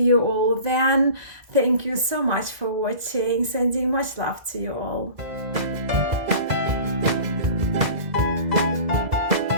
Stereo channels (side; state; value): left; late; 2.0 ms